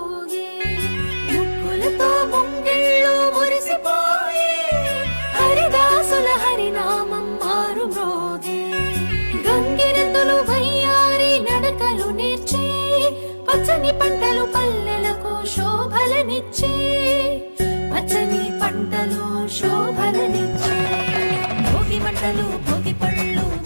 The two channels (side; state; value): both; inverted; correlation -1.00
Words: ముగ్గులతో ముంగిళ్ళు మురిసిపోయి హరిదాసుల హరినామం మారు మ్రోగే గంగిరెద్దులు వయ్యారి నడకలు నేర్చి పచ్చని పంటలు పల్లెలకు శోభలనిచ్చి పచ్చని పంటలు శోభలనిచ్చి భోగి మంటలు భోగి పళ్ళు